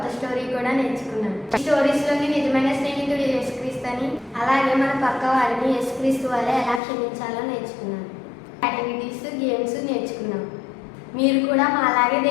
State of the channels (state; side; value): drops out; right; at 6.8 s